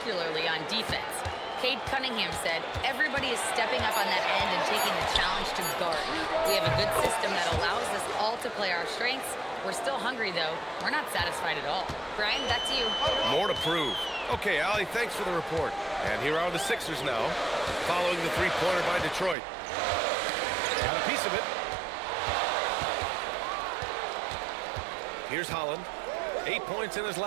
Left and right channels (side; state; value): left; drops out; at 19.4 s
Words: on defense. Cade Cunningham said, everybody is stepping up on that end and taking the challenge to guard. We have a good system that allows us all to play our strengths. We're still hungry, though. We're not satisfied at all. Brian, back to you. More to prove. Okay, Allie, thanks for the report. And here are the Sixers now, following the three-pointer by Detroit. Got a piece of it. Here's Holland. 8 points in his